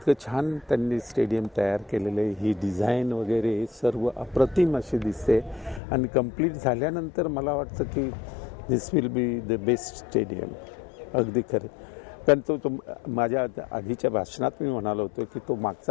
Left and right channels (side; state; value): right; drops out; at 5.8 s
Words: छान त्यांनी स्टेडियम तयार केलेलं आहे, ही डिझाईन वगैरे सर्व अप्रतिम अशी दिसते। आणि कंप्लीट झाल्यानंतर मला वाटतं की this will be the best stadium. अगदी खरं, कारण तो माझ्या आधीच्या भाषणात मी म्हणालो होतो की तो